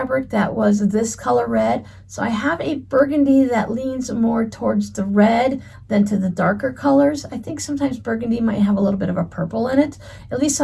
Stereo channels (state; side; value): identical; both; correlation 1.00